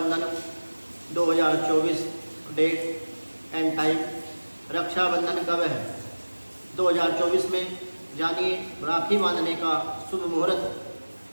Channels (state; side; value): inverted; both; correlation -1.00